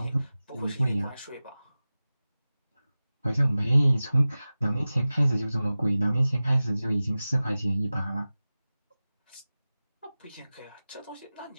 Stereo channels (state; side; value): inverted; both; correlation -0.97